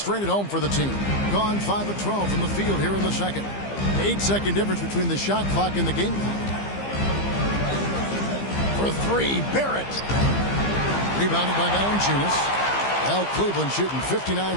at home for the team. Gone 5 of 12 from the field here in the second. 8-second difference between the shot clock and the game clock. For 3, Barrett. Rebounded by Valanciunas. Well, Cleveland shooting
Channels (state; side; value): late; right; 15 ms